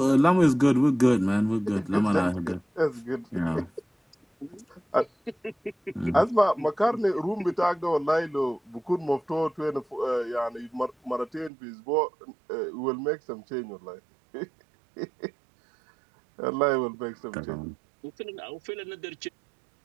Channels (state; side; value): drops out; left; at 11.5 s